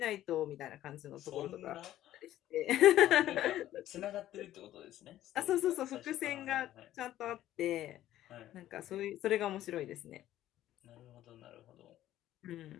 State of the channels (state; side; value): quieter; right; 13.4 dB